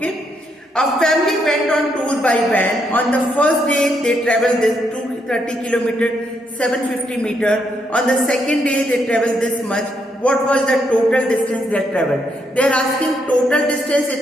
A family went on tour by van. On the first day they travelled this 230 kilometer, 750 meter. On the second day they travelled this much. What was the total distance they travelled? They are asking total distance,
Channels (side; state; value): both; normal; correlation 0.77